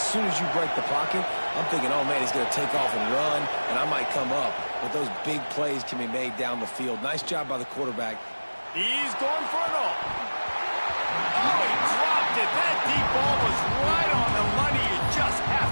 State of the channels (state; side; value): inverted; both; correlation -1.00